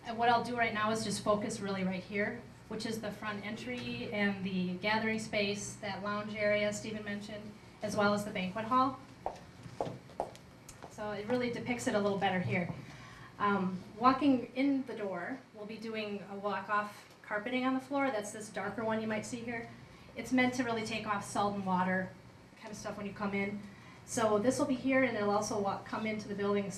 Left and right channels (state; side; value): identical; both; correlation 1.00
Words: and what I'll do right now is just focus really right here, which is the front entry and the gathering space, that lounge area Stephen mentioned, as well as the banquet hall. So it really depicts it a little better here. Walking in the door, we'll be doing a walk-off carpeting on the floor. That's this darker one you might see here. It's meant to really take off salt and water kind of stuff when you come in. So this will be here, and it'll also come into the building